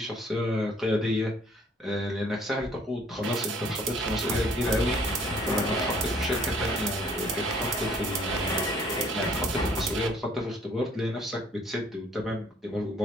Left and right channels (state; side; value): normal; both; correlation 0.59